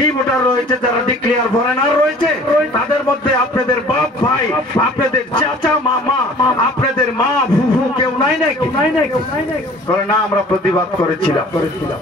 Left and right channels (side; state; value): both; normal; correlation 0.49